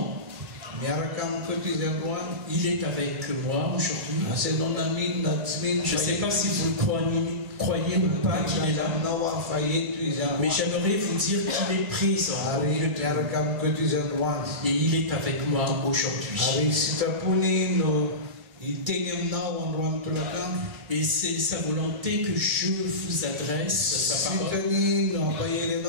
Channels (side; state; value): left; late; 2.3 ms